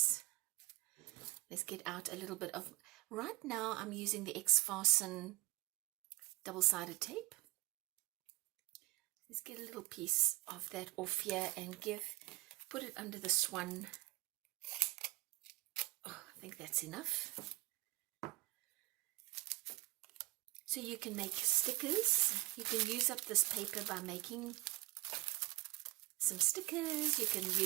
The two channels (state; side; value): quieter; left; 21.4 dB